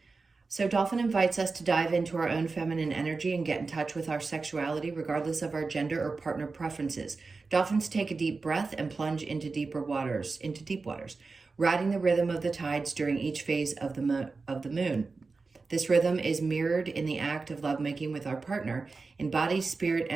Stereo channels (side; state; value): left; quieter; 4.1 dB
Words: so dolphin invites us to dive into our own feminine energy and get in touch with our sexuality, regardless of our gender or partner preferences. Dolphins take a deep breath and plunge into deep waters, riding the rhythm of the tides during each phase of the moon. This rhythm is mirrored in the act of lovemaking with our partner, in body, spirit,